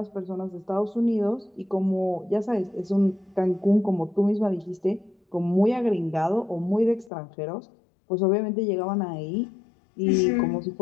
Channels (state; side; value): drops out; right; at 7.1 s